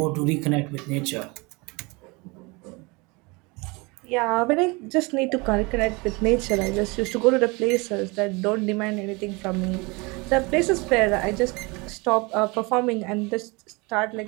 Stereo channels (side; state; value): left; quieter; 26.7 dB